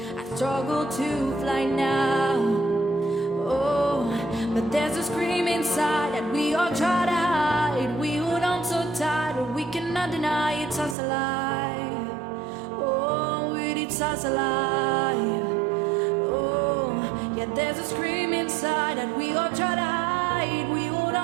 I struggle to fly now. Oh, but there's a scream inside that we all try to hide. We hold on so tight, but we cannot deny it's us alive. Oh, it's us alive. Oh, yeah, there's a scream inside that we all try to hide. We hold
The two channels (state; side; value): drops out; left; at 11.0 s